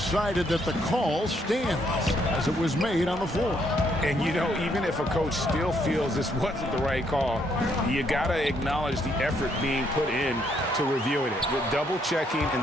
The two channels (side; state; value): both; normal; correlation 0.72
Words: that the call stands as it was made on the floor. And, you know, even if a coach still feels this wasn't the right call, you got to acknowledge the effort being put in to reviewing it. With double checking, and